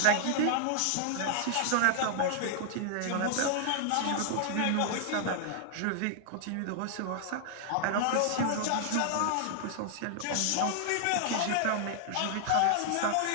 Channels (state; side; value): different; both; correlation -0.01